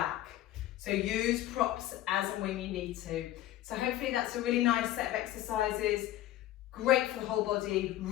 So use props as and when you need to. So hopefully that's a really nice set of exercises. Great for the whole body,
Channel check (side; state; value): right; quieter; 14.3 dB